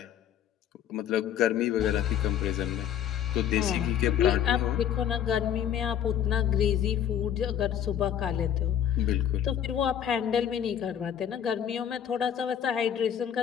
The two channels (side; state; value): right; quieter; 9.6 dB